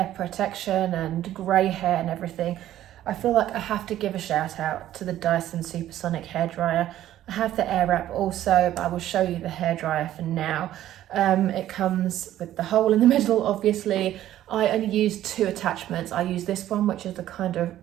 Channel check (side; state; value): left; quieter; 12.9 dB